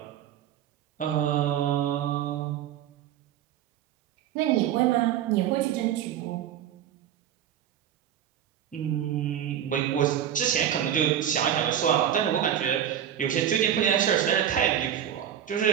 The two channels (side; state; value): left; quieter; 10.2 dB